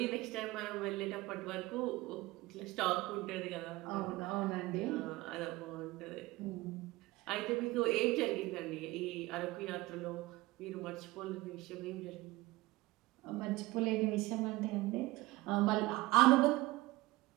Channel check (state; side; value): quieter; left; 19.8 dB